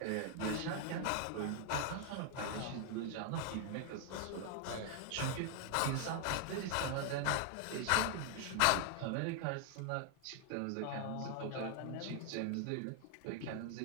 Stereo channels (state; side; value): different; both; correlation 0.00